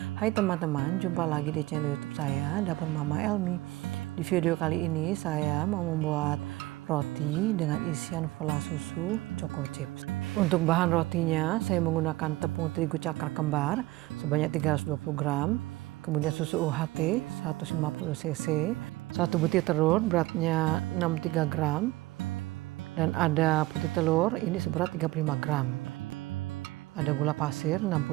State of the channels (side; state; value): left; quieter; 19.0 dB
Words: Hai teman-teman, jumpa lagi di channel YouTube saya, Dapur Mama Elmi. Di video kali ini saya mau membuat roti dengan isian vla susu choco chips. Untuk bahan rotinya saya menggunakan tepung terigu cakar kembar sebanyak 320 gram, kemudian susu UHT 150 cc, 1 butir telur beratnya 63 gram, dan ada putih telur ini seberat 35 gram. Ada gula pasir